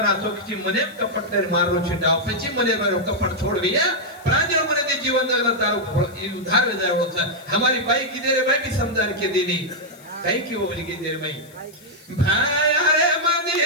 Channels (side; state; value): left; noise; hiss, 25 dB below the sound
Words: चौथी मने कपट तेरे मारो छिटा पची मने मारो कपट छोड़ दिया प्रांजल मने दे जीवन जगला तारो उधार में जाए होता हमारी बाई की देरे भाई भी समझा के देनी कहीं क्यों बोली की देरे भाई भाई अरे